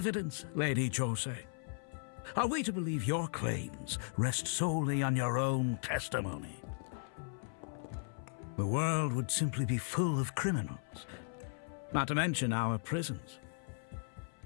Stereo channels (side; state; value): right; silent; 53 dB below the other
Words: Lady Josee. Are we to believe your claims rest solely on your own testimony? The world would simply be full of criminals, not to mention our prisons.